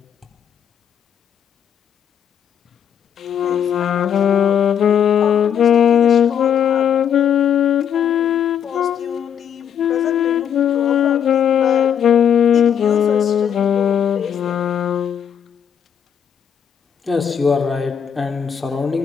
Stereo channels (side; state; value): right; quieter; 8.4 dB